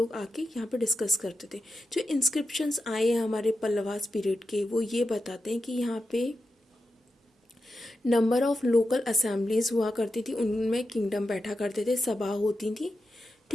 आके यहाँ पे डिस्कस करते थे। जो इंस्क्रिप्शंस आए हैं हमारे पल्लवास पीरियड के, वो ये बताते हैं कि यहाँ पे नंबर ऑफ लोकल असेंबलीज हुआ करती थी, उनमें किंगडम बैठा करते थे, सभा होती थी,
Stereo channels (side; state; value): both; normal; correlation 0.89